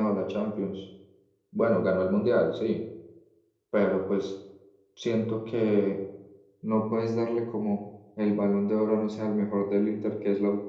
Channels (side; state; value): both; identical; correlation 1.00